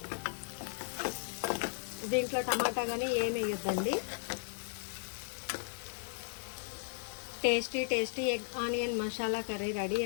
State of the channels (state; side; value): silent; right; digital silence